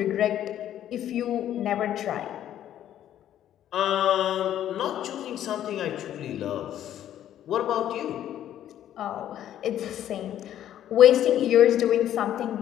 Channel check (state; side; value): quieter; right; 11.3 dB